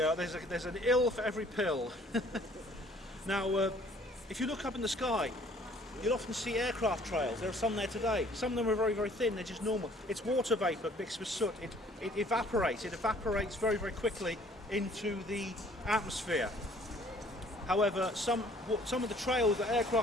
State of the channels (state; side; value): normal; both; correlation 0.57